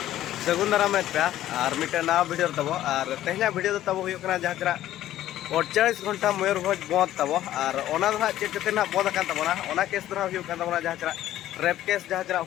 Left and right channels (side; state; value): right; quieter; 13.2 dB